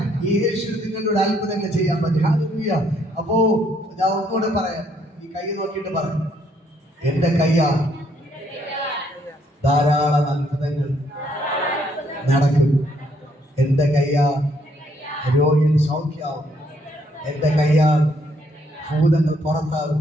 യേശു നിങ്ങളോട് അത്ഭുതങ്ങൾ ചെയ്യാൻ പറ്റും. ഹല്ലേലൂയ. അപ്പോ ഞാൻ ഒന്നുകൂടെ പറയാം, ഈ കൈ നോക്കിയിട്ട് പറയാം, എന്റെ കയ്യാ ധാരാളം അത്ഭുതങ്ങൾ നടക്കും. എന്റെ കയ്യാൽ രോഗികൾ സൗഖ്യാവും. എന്റെ കയ്യാൽ ഭൂതങ്ങൾ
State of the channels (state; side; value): normal; both; correlation 0.69